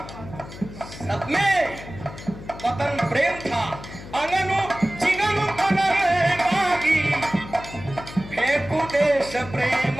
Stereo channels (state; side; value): noise; left; hum, 14 dB below the sound